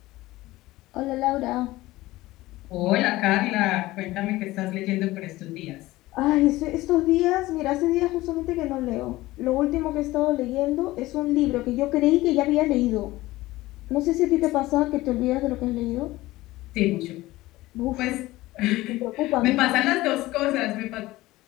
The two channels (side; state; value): right; quieter; 18.1 dB